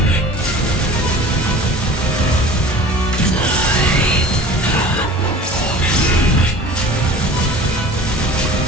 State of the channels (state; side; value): normal; both; correlation 0.42